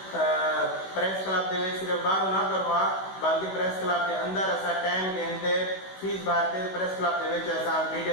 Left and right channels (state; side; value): late; right; 16 ms